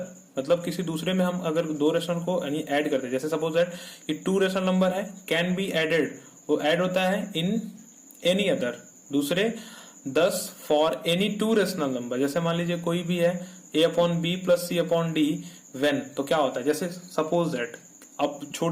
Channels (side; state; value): both; identical; correlation 1.00